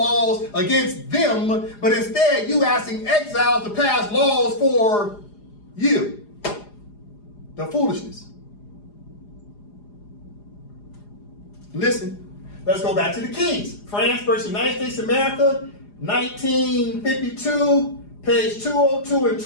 against them, but instead you asking exiles to pass laws for you. The foolishness. Listen, let's go back to the keys. France versus United States of America, 1952. Page 202 and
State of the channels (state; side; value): late; right; 4.9 ms